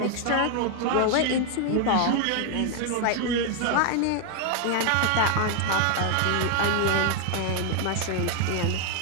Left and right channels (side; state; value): both; different; correlation 0.01